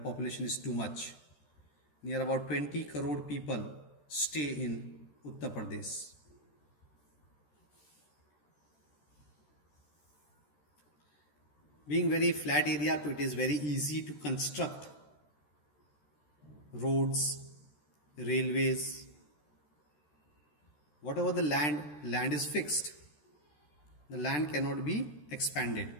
is too much. Near about 20 crore people stay in Uttar Pradesh. Being very flat area, so it is very easy to construct roads, railways. Whatever the land is fixed. The land cannot be expanded.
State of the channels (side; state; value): right; late; 13 ms